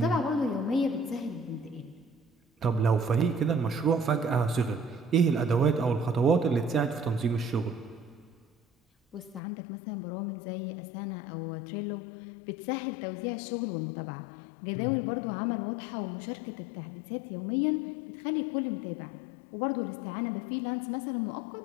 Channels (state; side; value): drops out; right; at 9.4 s